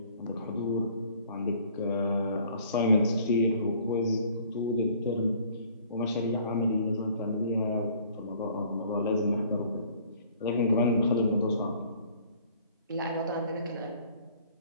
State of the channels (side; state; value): both; inverted; correlation -0.56